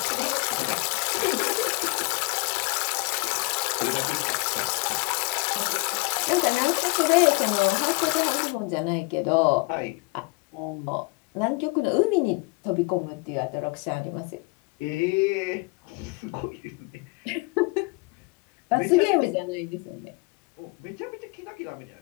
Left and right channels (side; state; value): right; quieter; 28.2 dB